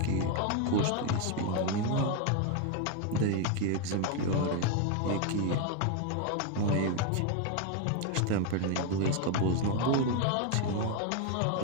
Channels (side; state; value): both; different; correlation 0.01